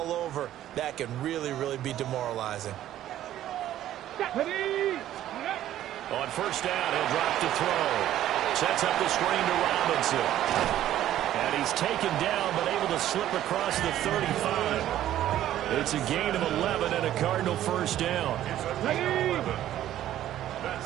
over. That can really, really be demoralizing. On first down, he'll drop to throw. Sets up the screen to Robinson. And he's taken down but able to slip across the 35. It's a gain of 11 and a Cardinal first down. It's a gain of 11.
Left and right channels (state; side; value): quieter; left; 12.5 dB